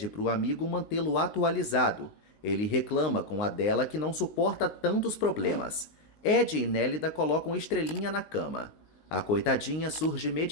para o amigo mantê-lo atualizado. Ele reclama com a dela que não suporta tantos problemas. Ed e Nélida colocam Estrelinha na cama. A coitadinha surge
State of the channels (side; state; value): right; late; 19 ms